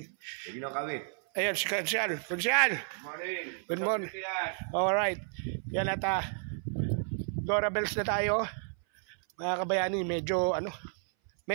Hindi na kami. Ayan, si Konsyal. Konsyal! Morning. Good morning. Alright. Yan at Dora Bells na tayo. Mga kabayani, medyo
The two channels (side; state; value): left; silent; 57 dB below the other